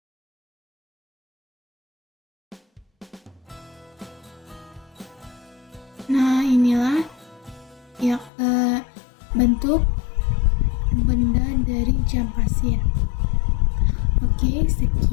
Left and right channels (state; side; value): drops out; right; at 8.3 s